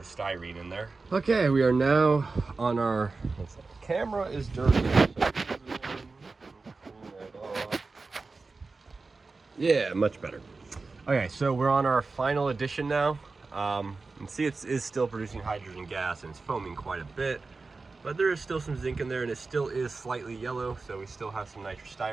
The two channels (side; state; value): left; quieter; 3.9 dB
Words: in there. Okay, we are now on our, camera is dirty. Yeah, much better. Okay, so we're on our final addition now. And see, it is still producing hydrogen gas, and it's foaming quite a bit. But there is still some zinc in there, and it still is slightly yellow, so we still have some